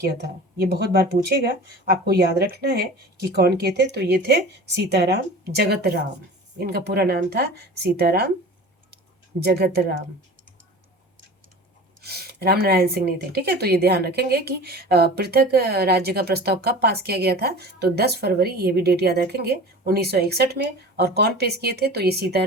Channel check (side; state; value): both; normal; correlation 0.38